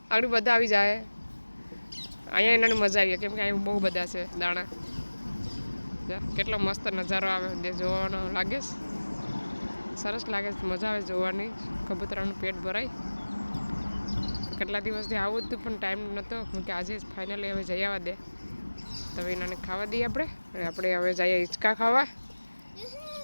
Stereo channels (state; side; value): inverted; both; correlation -1.00